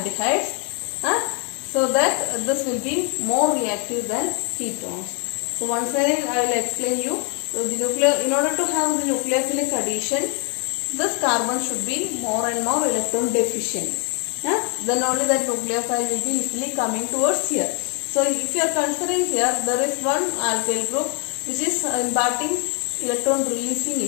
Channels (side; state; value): right; quieter; 37.7 dB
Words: so that this will be more reactive than ketones. So once again I will explain you. So the in order to have the nucleophilic addition, this carbon should be more and more electron deficient. Then only that nucleophile will be easily coming towards here. So if you are considering here, there is one alkyl group which is imparting electron releasing